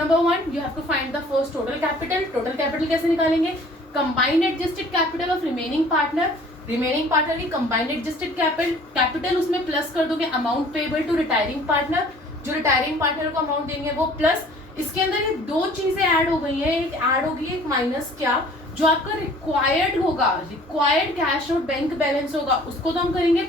1, you have to find the first total capital. Total capital कैसे निकालेंगे? Combined adjusted capital of remaining partner. Remaining partner की कंबाइंड एडजस्टेड कैपिटल, उसमें प्लस कर दोगे amount payable to retiring partner, जो रिटायरिंग पार्टनर को amount देंगे वो प्लस। इसके अंदर ये दो चीजें ऐड हो गई हैं, एक ऐड होगी एक माइनस, क्या, जो आपका रिक्वायर्ड होगा, रिक्वायर्ड कैश और बैंक बैलेंस होगा, उसको तो हम करेंगे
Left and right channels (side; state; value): both; normal; correlation 0.51